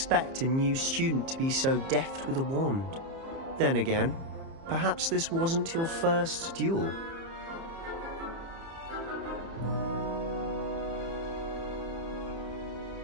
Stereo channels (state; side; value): late; left; 30 ms